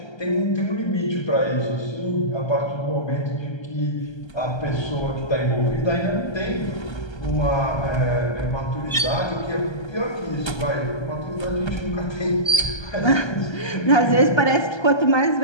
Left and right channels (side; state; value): right; late; 1.3 ms